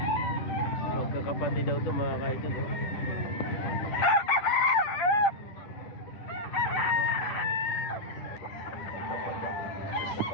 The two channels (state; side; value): late; right; 10 ms